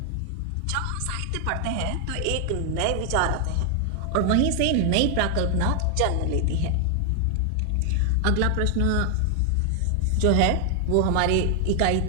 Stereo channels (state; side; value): different; both; correlation 0.00